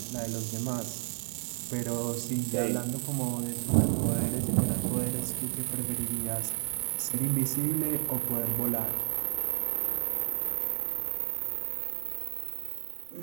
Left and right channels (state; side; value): silent; left; digital silence